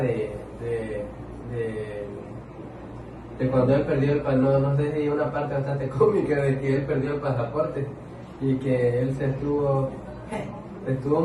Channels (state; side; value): identical; both; correlation 1.00